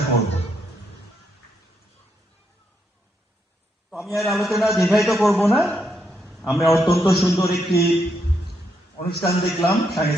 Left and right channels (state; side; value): normal; both; correlation 0.78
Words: করব। তো আমি আর আলোচনা দীর্ঘায়িত করব না। আমরা অত্যন্ত সুন্দর একটি অনুষ্ঠান দেখলাম,